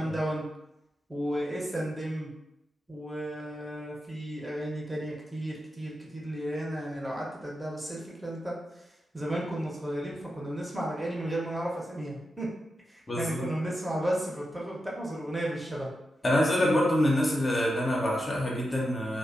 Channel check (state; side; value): normal; both; correlation 0.88